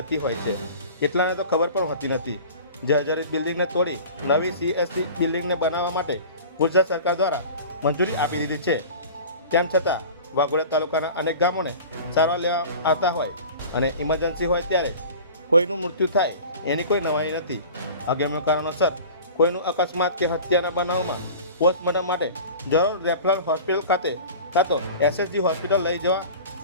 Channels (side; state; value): both; inverted; correlation -0.39